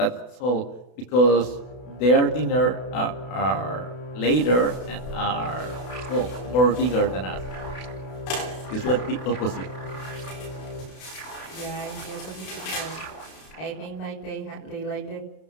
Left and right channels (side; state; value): right; late; 32 ms